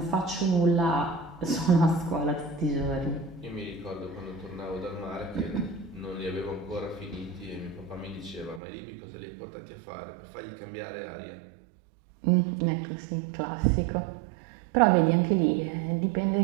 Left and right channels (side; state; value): left; drops out; at 8.6 s